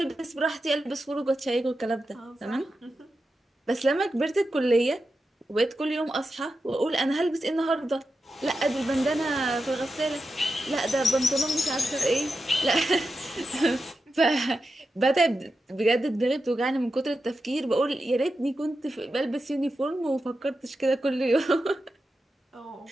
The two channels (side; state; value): both; normal; correlation 0.90